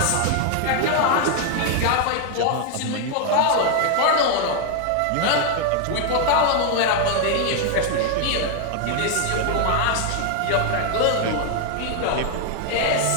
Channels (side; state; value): both; different; correlation 0.00